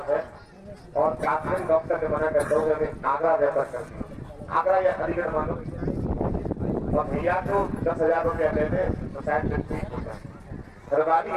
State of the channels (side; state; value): both; identical; correlation 1.00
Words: है और काफी डॉक्टर ने मना करता हूँ मैं आगरा रेफर करती हूँ, आगरा या अलीगढ़ मानो, और भैया को 10,000 रुपया देते तो शायद ठीक हो जाए। घरवाली